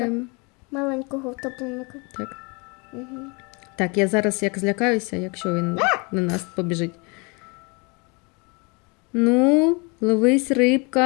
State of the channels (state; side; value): quieter; right; 30.1 dB